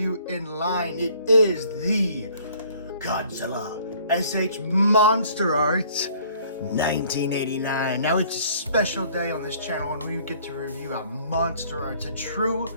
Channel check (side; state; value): both; inverted; correlation -0.58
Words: in line. It is the Godzilla SH Monsterarts 1989. Now it's a special day on this channel when we get to review a Monsterarts, a true